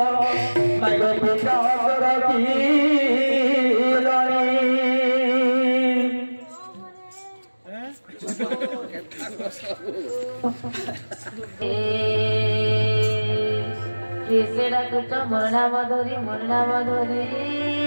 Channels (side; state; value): both; inverted; correlation -1.00